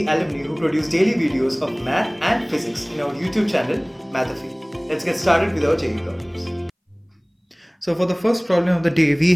alumni who produce daily videos of math and physics in our YouTube channel, Mathafi. Let's get started with our JEE problems. So for the first problem of the day, we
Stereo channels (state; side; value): identical; both; correlation 1.00